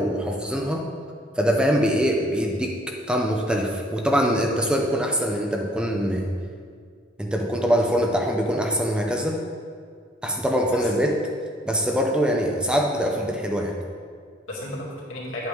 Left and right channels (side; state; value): both; normal; correlation 0.62